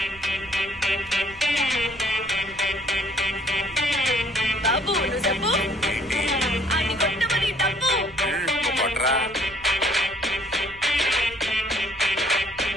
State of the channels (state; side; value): noise; right; rumble, 21 dB below the sound